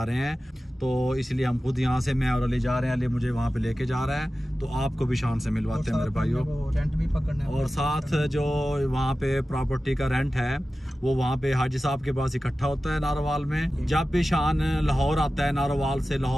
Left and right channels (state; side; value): normal; both; correlation 0.95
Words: रहे हैं, तो इसलिए हम खुद यहाँ से, मैं और अली जा रहे हैं। अली मुझे वहाँ पे लेके जा रहा है, तो आपको भी शान से मिलवाते हैं मेरे भाइयों। रेंट भी पकड़ना है। और साथ जो वहाँ पे प्रॉपर्टी का रेंट है वो वहाँ पे हाजी साहब के पास इकट्ठा होता है नारोवाल में। जब भी शान लाहौर आता है, नारोवाल से